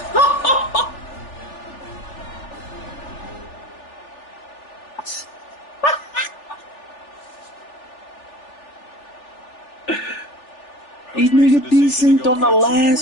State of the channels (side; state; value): right; late; 3.4 ms